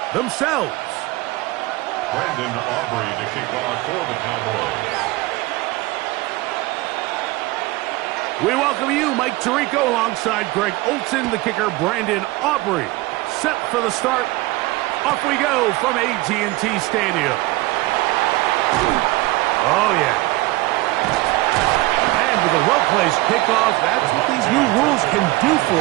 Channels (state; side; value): quieter; left; 20.2 dB